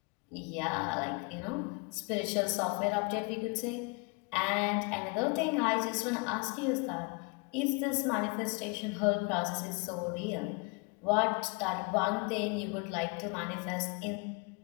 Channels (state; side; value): quieter; right; 31.7 dB